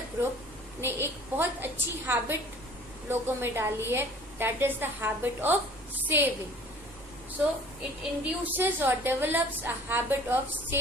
ग्रुप ने एक बहुत अच्छी हैबिट लोगों में डाली है. That is the habit of saving. So it induces और develops a habit of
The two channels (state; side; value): noise; right; rumble, 22 dB below the sound